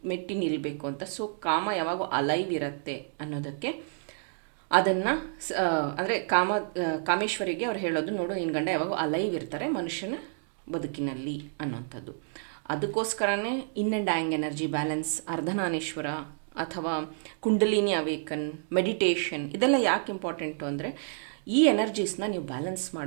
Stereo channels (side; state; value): left; silent; digital silence